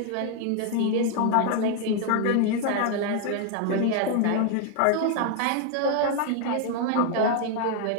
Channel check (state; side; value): different; both; correlation 0.00